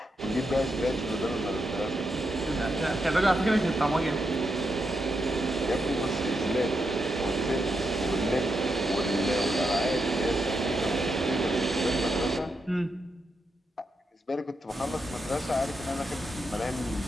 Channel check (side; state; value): both; normal; correlation 0.84